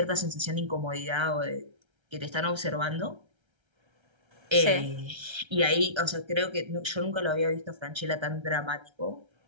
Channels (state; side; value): late; left; 1.3 ms